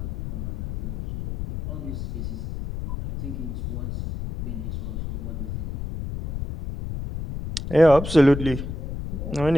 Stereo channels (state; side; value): noise; left; rumble, 6 dB below the sound